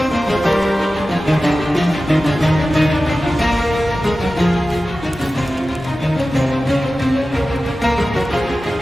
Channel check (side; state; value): both; normal; correlation 0.95